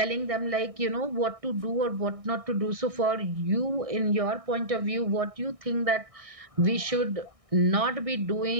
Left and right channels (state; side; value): late; left; 1.6 ms